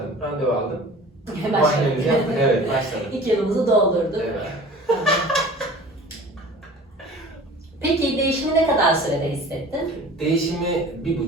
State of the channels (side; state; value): both; normal; correlation 0.43